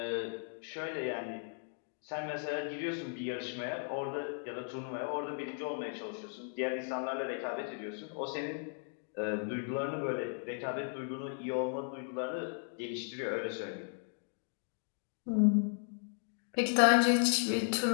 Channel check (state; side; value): silent; right; 54 dB below the other